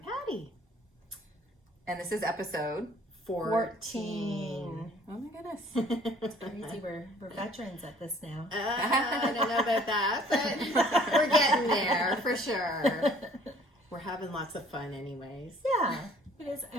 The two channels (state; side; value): normal; both; correlation 0.56